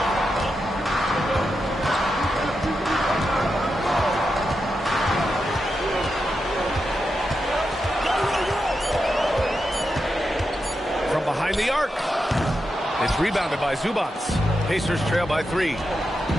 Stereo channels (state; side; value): normal; both; correlation 0.87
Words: From behind the arc. It's rebounded by Zubac. Pacers trail by 3.